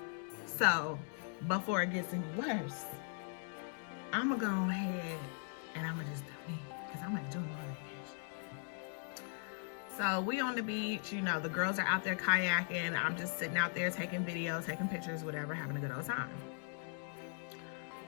So before it gets any worse, I'm gonna go ahead and I'm gonna just do me, because I'm gonna do more vacation. So we on the beach, you know, the girls are out there kayaking. I'm just sitting out there taking videos, taking pictures, whatever, having a good old time.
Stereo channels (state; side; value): silent; right; 52 dB below the other